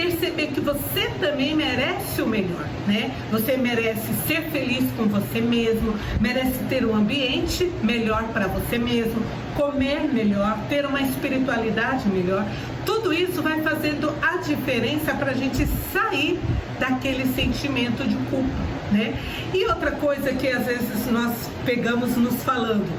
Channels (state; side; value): identical; both; correlation 1.00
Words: que você também merece o melhor, né? Você merece ser feliz com você mesmo, merece ter um ambiente melhor para você mesmo, comer melhor, ter uma espiritualidade melhor. Tudo isso vai fazendo a diferença para a gente sair daquele sentimento de culpa, né? E outra coisa que às vezes nós pegamos nos falando: